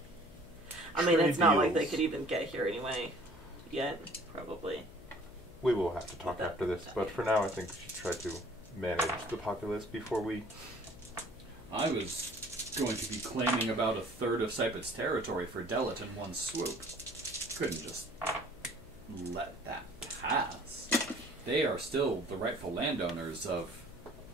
I mean, it's not like they deals. could even get here anyway. Yet, probably. We will have to talk after this, but for now I think we should try to manage the populace before we... I was going to be claiming about 1/3 of Sypet's territory for Delit in one swoop. Couldn't just let that pass. They are still the rightful landowners of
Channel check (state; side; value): noise; left; hum, 19 dB below the sound